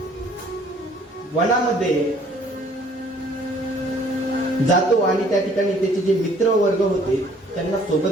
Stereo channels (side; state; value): both; normal; correlation 0.59